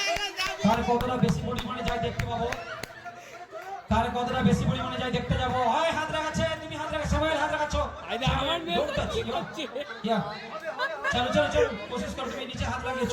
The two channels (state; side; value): identical; both; correlation 1.00